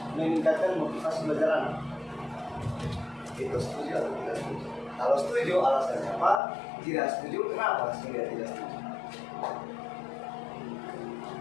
meningkatkan motivasi belajar anak. Itu setuju atau tidak setuju? Kalau setuju alasannya apa? Tidak setuju kenapa? Sehingga tidak setuju.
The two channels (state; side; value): drops out; right; at 6.4 s